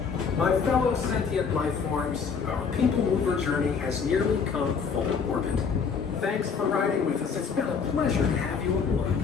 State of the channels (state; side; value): quieter; right; 5.9 dB